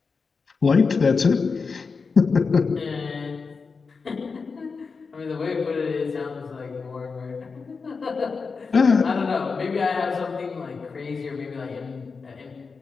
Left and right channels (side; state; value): right; quieter; 4.9 dB